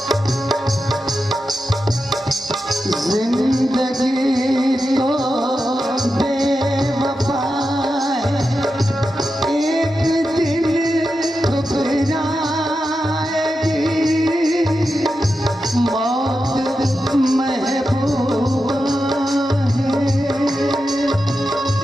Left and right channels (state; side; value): normal; both; correlation 0.89